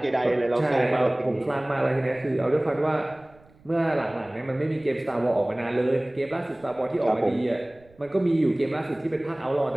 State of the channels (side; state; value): right; noise; rumble, 28 dB below the sound